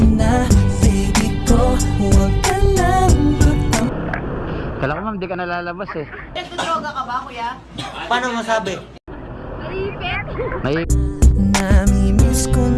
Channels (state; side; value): identical; both; correlation 1.00